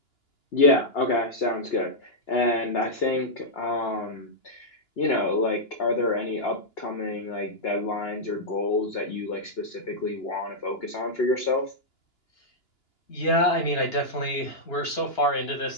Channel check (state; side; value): late; right; 2.9 ms